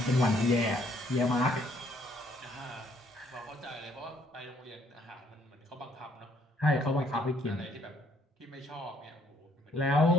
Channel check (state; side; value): normal; both; correlation 0.66